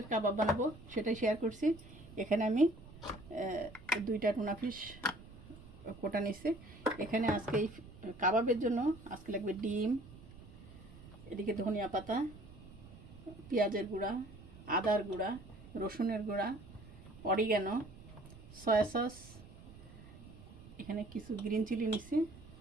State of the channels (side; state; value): right; noise; rumble, 18 dB below the sound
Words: কাবাব বানাবো, সেটাই শেয়ার করছি। এখানে আমি দুইটা টুনা ফিশ কোটা নিচ্ছি। এখানে আজকে এই কাবাবের জন্য আজকে লাগবে ডিম, এদিকে ধনিয়া পাতা, পেঁয়াজের গুঁড়া, আদার গুঁড়া, রসুনের গুঁড়া, অরিগ্যানো, সয়া সস, এখানে কিছু গ্রিন চিলি নিচ্ছি,